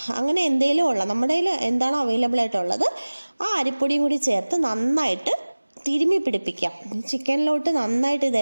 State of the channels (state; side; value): inverted; both; correlation -1.00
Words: അങ്ങനെ എന്തെങ്കിലും ഉള്ള നമ്മുടെ കയ്യിൽ എന്താണോ അവൈലബിൾ ആയിട്ടുള്ളത് ആ അരിപ്പൊടിയും കൂടി ചേർത്ത് നന്നായിട്ട് തിരുമ്മി പിടിപ്പിക്കാം. ചിക്കനിലോട്ട് നന്നായിട്ട്